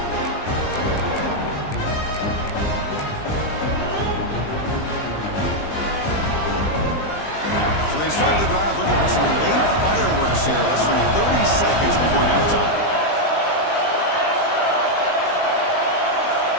So they start the drive looking for some late fireworks here, less than 30 seconds before halftime.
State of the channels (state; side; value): late; right; 20 ms